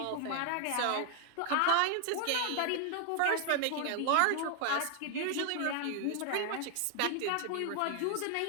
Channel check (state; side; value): different; both; correlation 0.00